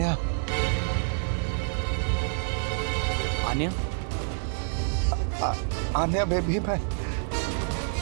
आन्या? आन्या बेबी, मैं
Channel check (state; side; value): silent; left; digital silence